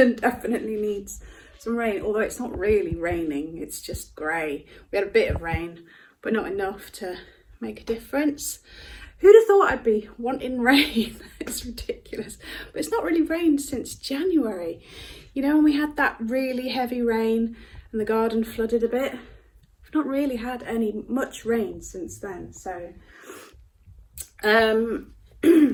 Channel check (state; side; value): identical; both; correlation 1.00